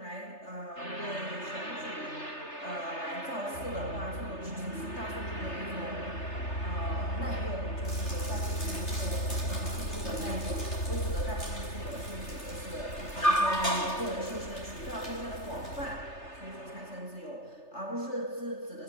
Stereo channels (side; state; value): right; late; 3.3 ms